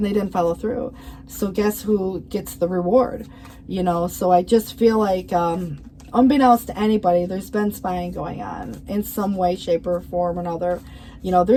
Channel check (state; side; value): identical; both; correlation 1.00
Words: they didn't follow through. So guess who gets the reward? So I just feel like, unbeknownst to anybody, there's been spying going on in some way, shape, or form or another.